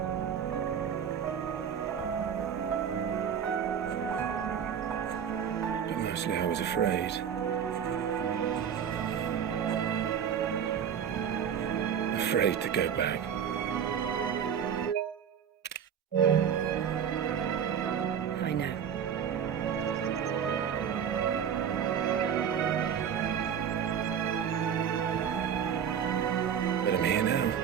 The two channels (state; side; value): quieter; left; 8.2 dB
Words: But mostly I was afraid. Afraid to go back. I know. But I'm here now.